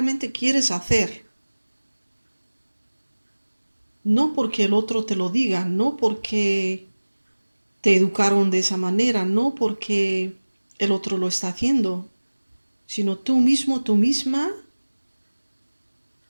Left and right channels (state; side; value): inverted; both; correlation -1.00